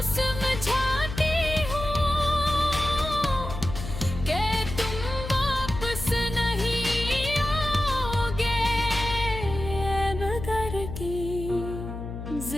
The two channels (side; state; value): left; noise; hum, 8 dB below the sound